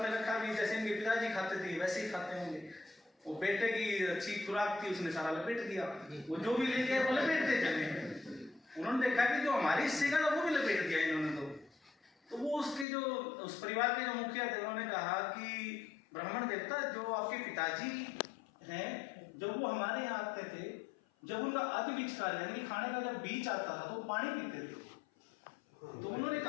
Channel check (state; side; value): drops out; right; at 12.9 s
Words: रखा भी, जैसे इनके पिताजी खाते थे वैसे ही खाते होंगे। वो बेटे की अच्छी खुराक थी, उसने सारा लपेट दिया, वो जो भी लेके आए वो लपेट देते। उन्होंने देखा कि जो हमारे हिस्से का था वो भी लपेट दिया इन्होंने। तो वो उसके जो उस परिवार के जो मुखिया थे, उन्होंने कहा कि ब्राह्मण देवता, जो आपके पिताजी हैं, जब वो हमारे यहाँ आते थे, जब उनका आदि बीज कार्य यानी खाने का जब बीज आता था तो वो पानी पीते थे। तो उन्होंने